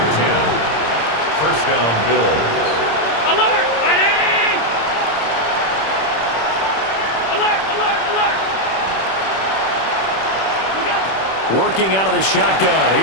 10. First down, Bills. Alert! Fighting! Alert! Alert! Alert! Working out of the shotgun.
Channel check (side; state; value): right; late; 26 ms